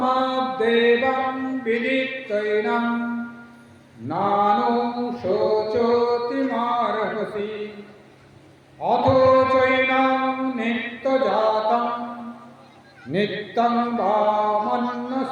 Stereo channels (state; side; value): identical; both; correlation 1.00